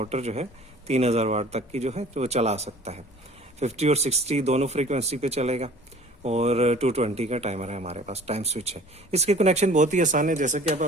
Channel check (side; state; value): both; normal; correlation 0.48